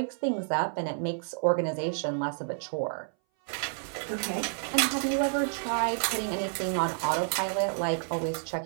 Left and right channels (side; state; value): left; silent; 58 dB below the other